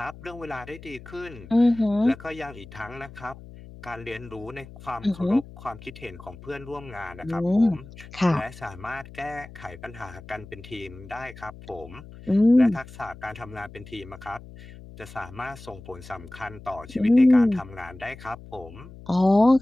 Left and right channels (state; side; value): noise; left; hum, 17 dB below the sound